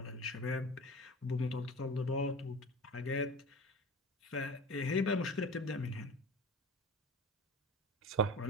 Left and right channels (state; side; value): normal; both; correlation 0.35